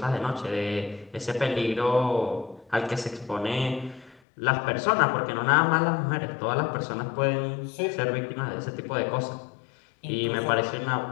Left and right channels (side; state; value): right; drops out; at 4.2 s